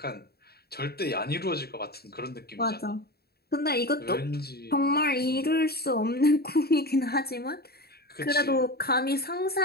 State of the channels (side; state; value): right; late; 0.46 ms